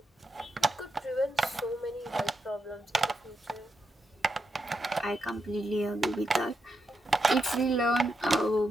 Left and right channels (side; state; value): both; normal; correlation 0.85